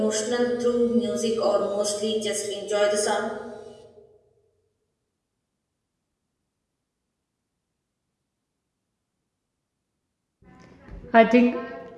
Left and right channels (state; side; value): identical; both; correlation 1.00